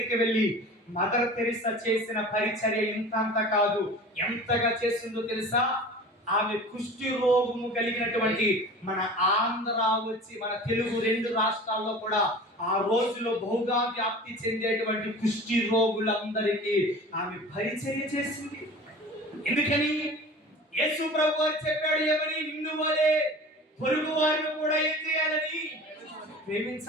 వెళ్ళి మదర్ తెరిసా చేసిన పరిచర్య ఇంత కాదు, ఎంతగా చేసిందో తెలుసా? ఆమె కుష్టి రోగము కలిగినటువంటి మన ఆంధ్ర వచ్చి మన తెలుగు 2 రాష్ట్రాల్లో కూడా ఆ రోజులో బహుగా వ్యాప్తి చెందేటువంటి కుష్టి రోగులందరికీ ఆమె పరిచర్య చేసింది. ఎందుకని? యేసు ప్రభు వారు చెప్పాడు ఏమని? నిన్ను వలే పొరుగు వారిని కూడా ఏం చేయాలని?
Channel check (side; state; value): both; normal; correlation 0.39